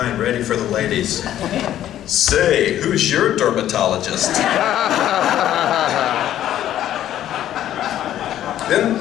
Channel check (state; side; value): quieter; right; 11.9 dB